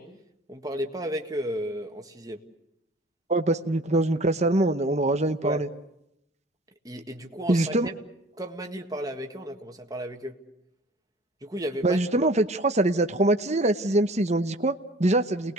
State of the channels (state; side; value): normal; both; correlation 0.48